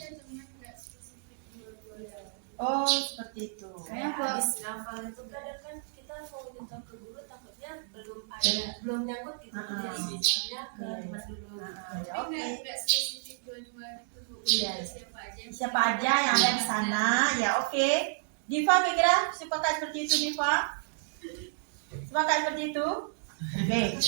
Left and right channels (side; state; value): left; silent; digital silence